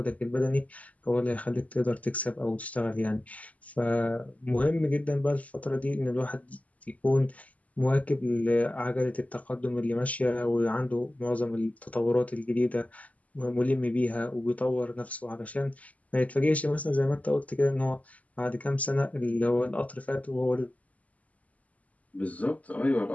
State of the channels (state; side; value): late; right; 0.072 ms